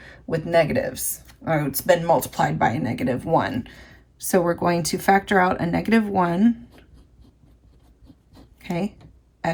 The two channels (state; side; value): identical; both; correlation 1.00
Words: with negatives. Oh, it's been multiplied by a -1. So we're going to factor out a -1. Okay,